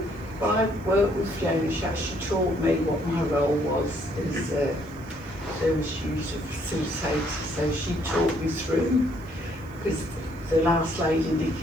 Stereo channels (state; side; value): noise; left; hiss, 29 dB below the sound